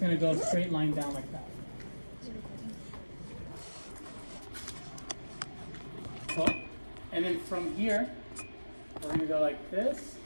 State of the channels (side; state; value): both; inverted; correlation -1.00